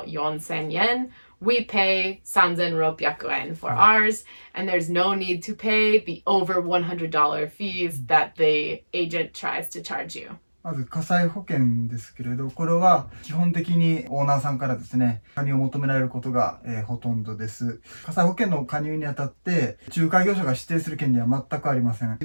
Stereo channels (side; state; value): both; inverted; correlation -1.00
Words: 4,000 yen. We pay 3,600 yen for ours, and there's no need to pay the over $100 fees that the agent tries to charge you. まず火災保険ですけれど、これは基本的にオーナーさんからですね、加入を求められることが、ほとんどです。火災保険の加入にあたって仲介業者が指定する権利は全くありません。